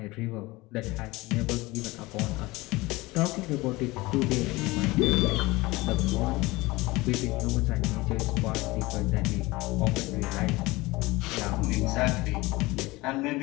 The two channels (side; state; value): right; quieter; 21.3 dB